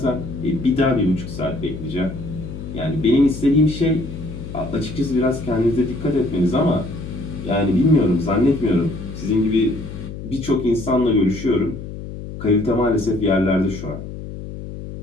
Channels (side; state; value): left; noise; hum, 10 dB below the sound